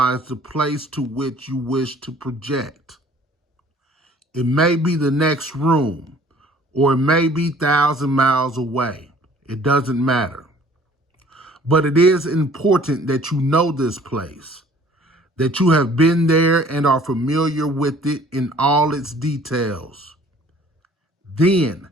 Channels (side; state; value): both; normal; correlation 0.54